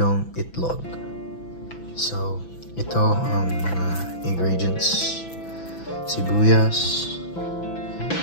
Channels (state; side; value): late; right; 6.0 ms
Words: itlog. So, ito ang mga ingredients: sibuyas,